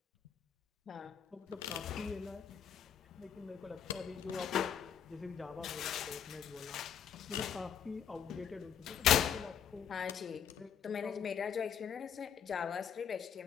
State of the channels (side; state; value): right; quieter; 8.3 dB